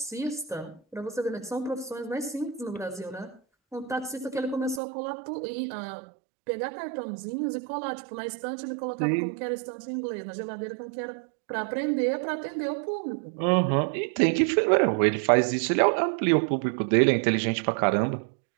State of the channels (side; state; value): left; drops out; at 4.8 s